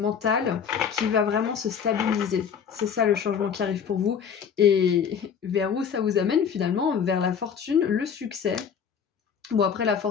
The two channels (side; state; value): right; quieter; 7.2 dB